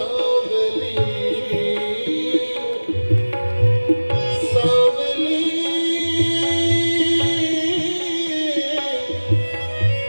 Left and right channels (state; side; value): inverted; both; correlation -1.00